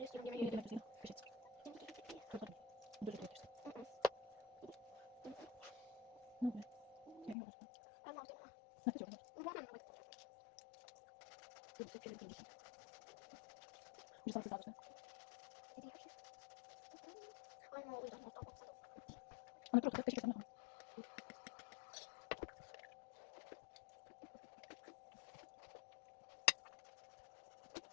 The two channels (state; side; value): drops out; right; at 7.4 s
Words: istiyorum yemeği? Ben aldım. Bu ne? Ama o yüzden nokta nokta.